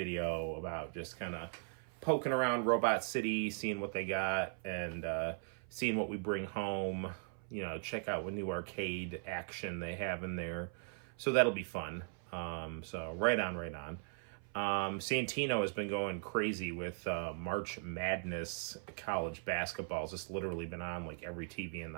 about just kind of poking around Robot City, seeing what they got, and seeing what we bring home. Check out what new arcade action they have in there. So that'll be fun. So right on. Santino has been going crazy with March Madness college basketball. It's just literally been on like every TV in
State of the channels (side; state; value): left; silent; 52 dB below the other